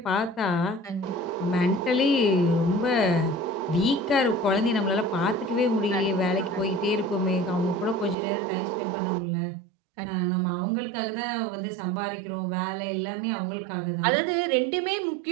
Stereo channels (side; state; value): left; drops out; at 8.2 s